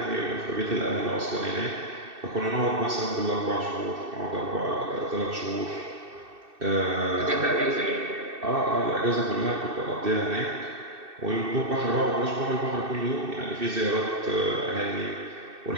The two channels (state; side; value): late; left; 2.6 ms